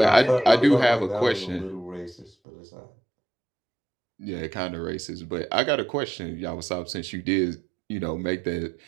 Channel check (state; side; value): drops out; left; at 2.3 s